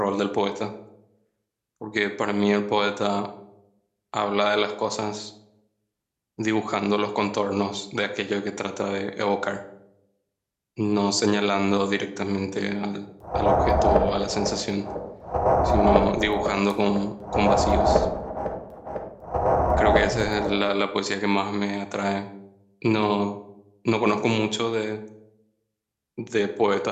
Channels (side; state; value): both; identical; correlation 1.00